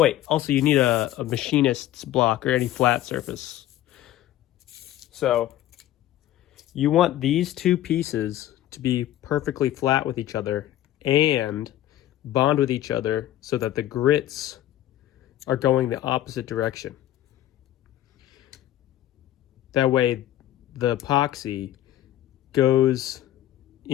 also you need a machinist's block or any flat surface. So you want these two pieces to be perfectly flat with each other and bond with each other so that the grits are going the opposite direction. That way the epoxy goes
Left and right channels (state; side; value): quieter; right; 13.4 dB